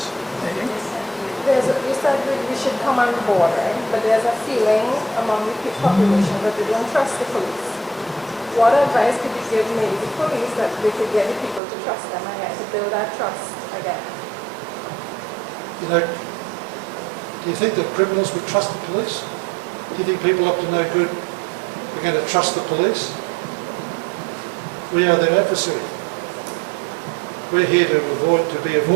You said we should come on board, right? But there's a feeling among the population that they don't trust the police. What advice could you give maybe the police that they could get the people to trust them again, to build that trust again? You know, do you think that criminals would trust the police? Do you think people up to no good are going to trust the police? We are their adversary. We're here to be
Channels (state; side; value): drops out; left; at 11.6 s